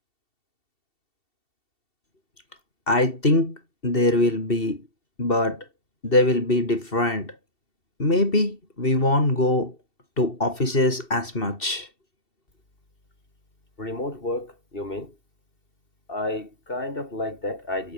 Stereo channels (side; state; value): right; late; 2.7 ms